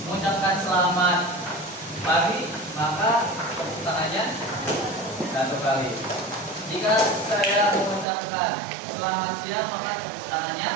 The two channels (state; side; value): drops out; left; at 8.1 s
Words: mengucapkan selamat pagi, maka tepuk tangannya 1 kali. Jika saya mengucapkan selamat siang, maka tepuk tangannya